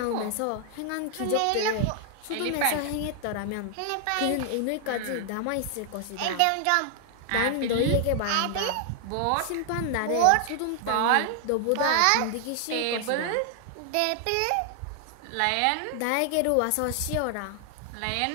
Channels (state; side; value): different; both; correlation 0.00